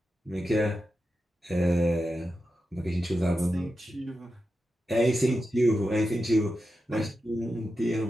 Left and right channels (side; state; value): both; normal; correlation 0.90